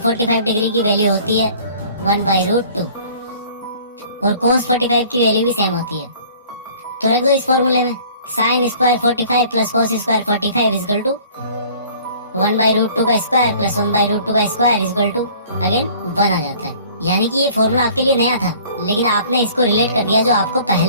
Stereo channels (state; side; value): inverted; both; correlation -0.51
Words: डिग्री की वैल्यू होती है 1/√2 और कोस 45 की वैल्यू भी सेम होती है। तो रख दो इस फॉर्मूले में sine square 45 plus cos square 45 equal to 1/√2 का स्क्वायर प्लस 1/√2 का square is equal to again 1 आ जाता है। यानी कि ये फॉर्मूला आपके लिए नया था, लेकिन आपने इसको रिलेट कर दिया जो आपको